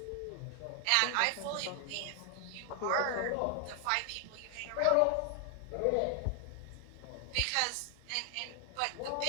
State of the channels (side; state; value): both; different; correlation 0.00